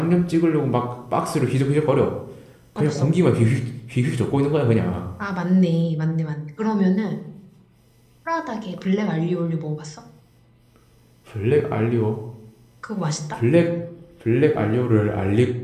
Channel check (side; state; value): both; identical; correlation 1.00